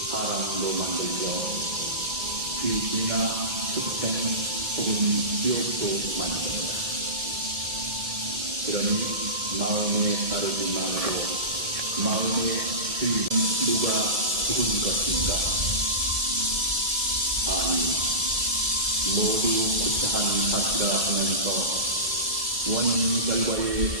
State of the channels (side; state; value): left; late; 1.7 ms